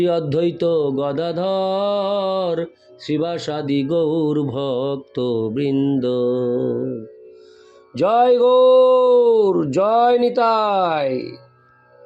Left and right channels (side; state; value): both; identical; correlation 1.00